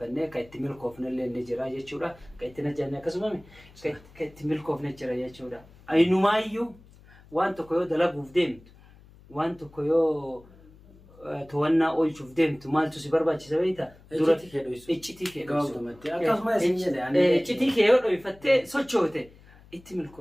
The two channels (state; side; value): noise; left; hum, 24 dB below the sound